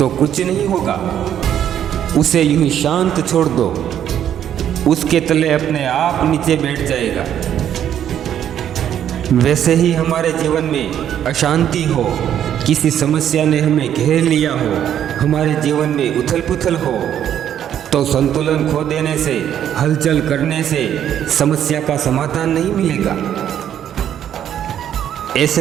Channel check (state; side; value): quieter; left; 10.1 dB